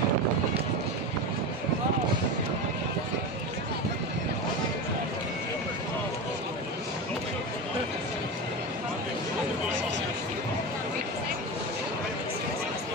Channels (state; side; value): normal; both; correlation 0.22